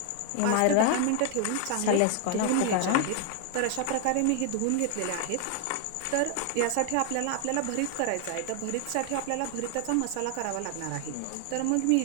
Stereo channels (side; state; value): both; different; correlation 0.00